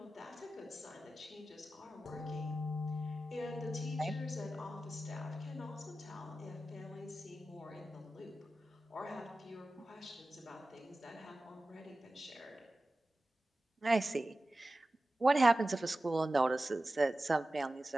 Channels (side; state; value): both; normal; correlation 0.94